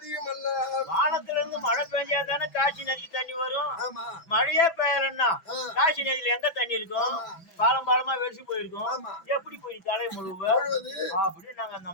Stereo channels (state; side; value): late; right; 6.0 ms